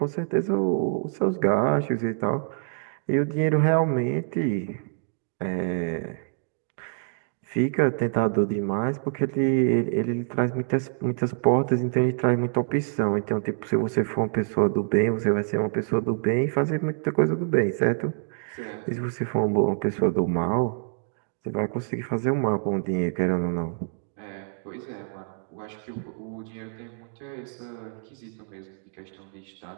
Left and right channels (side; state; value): left; silent; digital silence